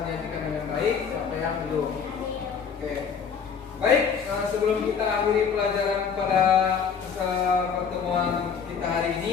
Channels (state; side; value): quieter; right; 6.5 dB